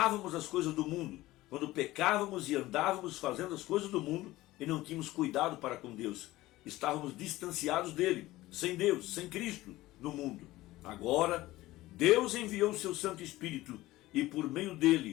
as coisas do mundo, quando pecávamos e andávamos fazendo as coisas do mundo e não tínhamos cuidado para com Deus, estávamos distanciados dele, sem Deus, sem Cristo no mundo. Agora, Deus enviou o seu Santo Espírito e por meio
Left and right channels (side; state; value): right; quieter; 17.5 dB